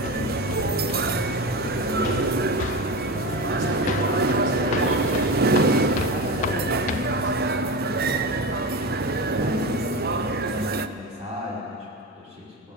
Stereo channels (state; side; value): normal; both; correlation 0.23